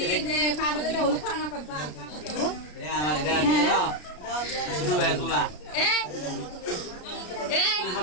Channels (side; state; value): right; late; 33 ms